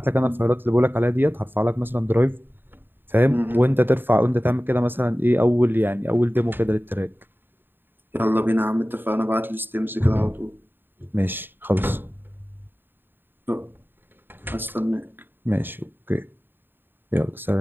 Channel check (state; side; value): late; left; 0.097 ms